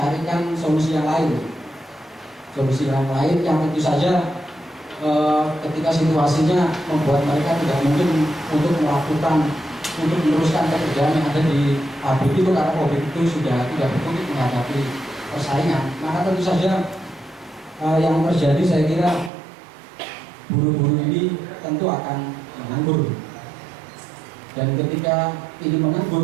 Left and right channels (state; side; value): drops out; left; at 19.3 s